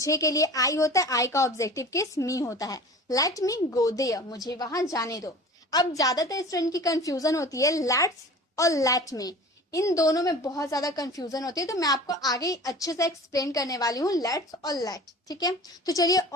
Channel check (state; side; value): normal; both; correlation 0.40